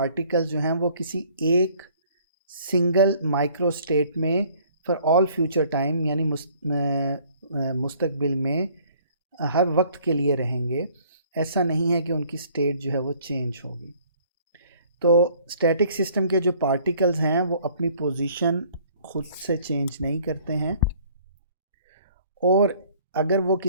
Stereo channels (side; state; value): both; inverted; correlation -0.57